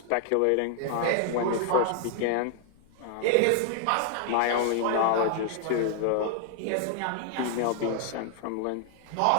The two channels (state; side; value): different; both; correlation 0.00